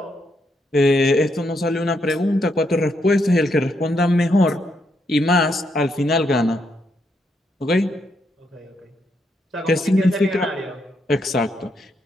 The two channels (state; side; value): normal; both; correlation 0.78